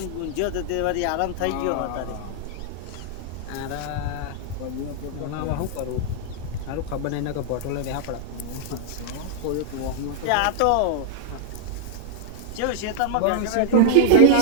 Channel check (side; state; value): both; different; correlation -0.01